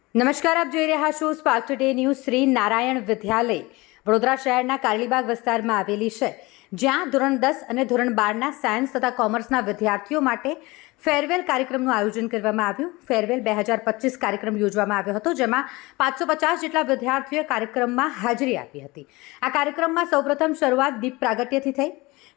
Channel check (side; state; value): right; quieter; 22.5 dB